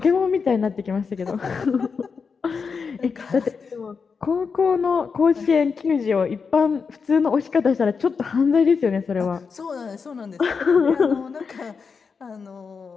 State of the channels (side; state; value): right; quieter; 5.5 dB